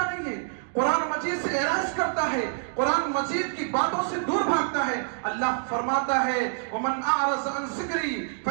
نہیں ہے، قرآن مجید سے اعراض کرتا ہے، قرآن مجید کی باتوں سے دور بھاگتا ہے۔ اللہ فرماتا ہے وَمَنْ أَعْرَضَ عَنْ ذِكْرِي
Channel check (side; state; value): left; silent; digital silence